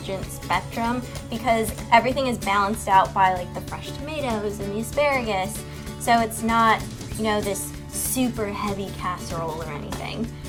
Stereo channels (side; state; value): both; identical; correlation 1.00